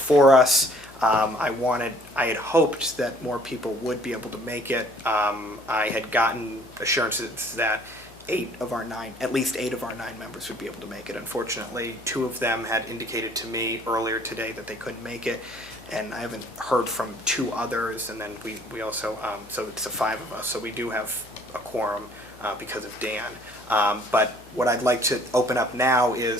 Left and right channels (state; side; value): noise; left; hum, 23 dB below the sound